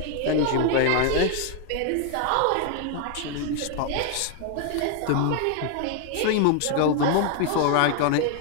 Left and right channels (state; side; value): different; both; correlation 0.00